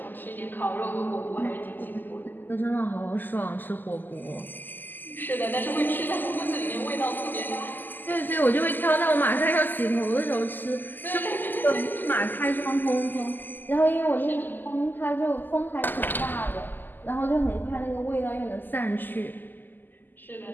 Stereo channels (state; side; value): late; right; 0.089 ms